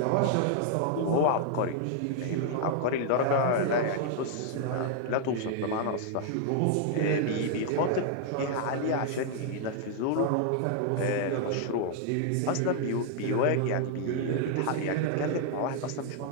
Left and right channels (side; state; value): both; different; correlation 0.00